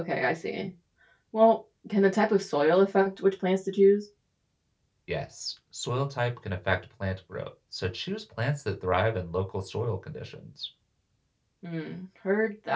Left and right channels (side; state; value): both; identical; correlation 1.00